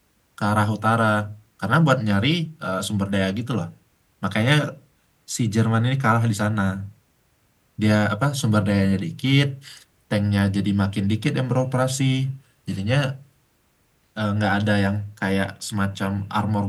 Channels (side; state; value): both; identical; correlation 1.00